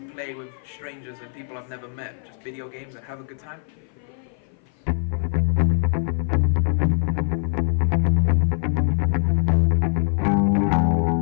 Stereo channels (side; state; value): right; silent; 56 dB below the other